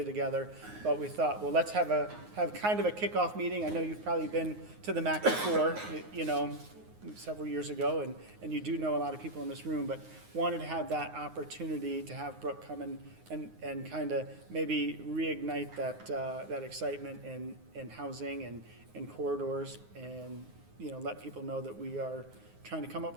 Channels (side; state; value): left; late; 9.6 ms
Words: together, but we thought, well, let's have kind of a kickoff meeting. I know you've probably been to the MACC before, several years ago, and you do know a lot of people in this room, but wanted to have that opportunity to have Brooke come and kind of maybe reignite that excitement in housing and corridors, and let people know that we are trying to come up